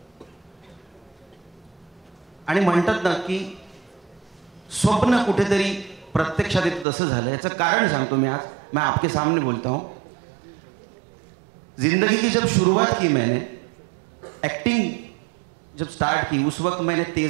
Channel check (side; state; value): left; drops out; at 6.9 s